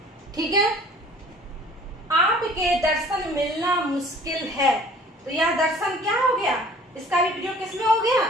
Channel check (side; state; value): both; normal; correlation 0.51